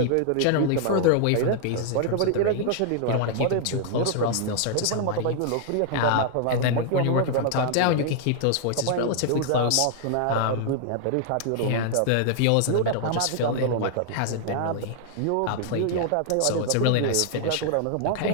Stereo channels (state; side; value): different; both; correlation -0.01